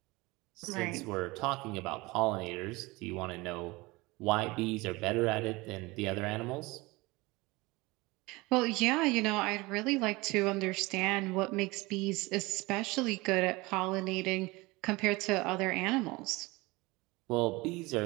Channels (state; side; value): quieter; left; 22.8 dB